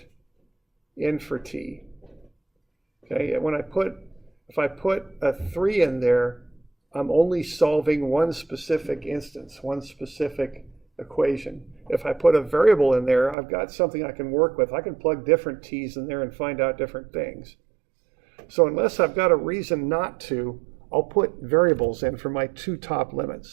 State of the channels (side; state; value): left; drops out; at 13.4 s